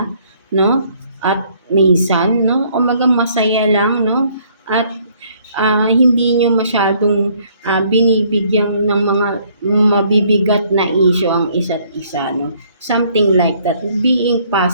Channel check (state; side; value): inverted; both; correlation -0.63